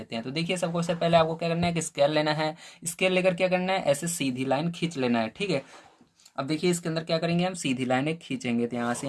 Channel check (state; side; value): identical; both; correlation 1.00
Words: हैं। तो देखिए सबसे पहले आपको क्या करना है कि स्केल लेना है, स्केल लेकर क्या करना है, ऐसे सीधी लाइन खींच लेना है, ठीक है। अब देखिए इसके अंदर क्या करेंगे, हम सीधी लाइन एक खींचेंगे, तो यहाँ से